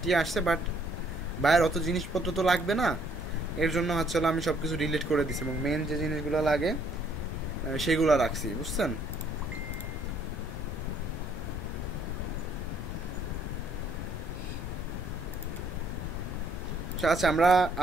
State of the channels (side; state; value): both; normal; correlation 0.65